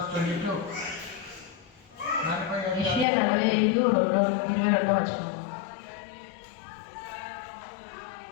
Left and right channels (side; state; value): right; drops out; at 3.1 s